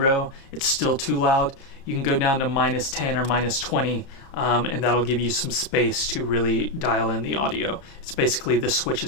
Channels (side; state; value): right; late; 30 ms